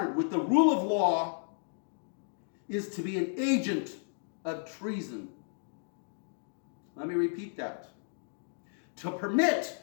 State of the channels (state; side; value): silent; right; digital silence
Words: with the rule of law is to be an agent of treason. Let me repeat that. To permit